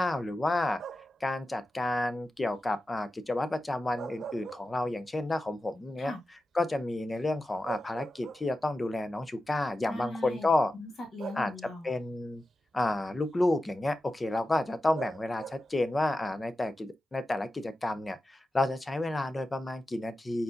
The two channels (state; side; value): normal; both; correlation 0.92